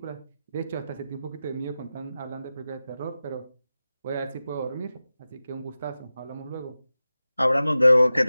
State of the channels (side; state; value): both; inverted; correlation -0.94